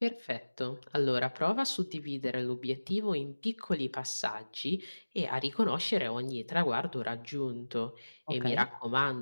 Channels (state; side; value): inverted; both; correlation -1.00